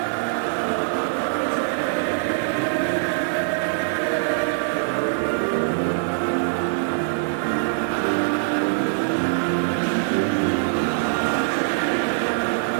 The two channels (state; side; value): silent; left; digital silence